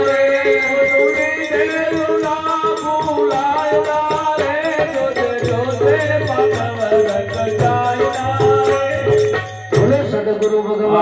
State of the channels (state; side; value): identical; both; correlation 1.00